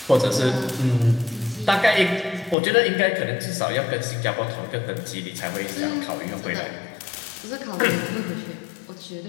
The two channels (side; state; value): right; drops out; at 2.6 s